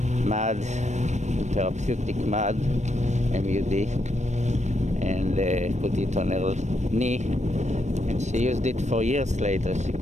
mud, therapeutic mud, MUD, and put it on her knee, and she used it for years later. She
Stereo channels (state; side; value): late; left; 0.34 ms